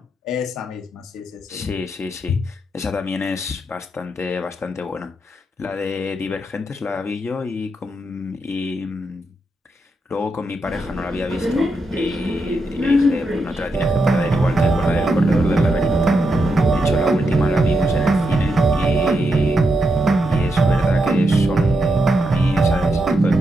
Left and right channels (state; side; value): normal; both; correlation 0.84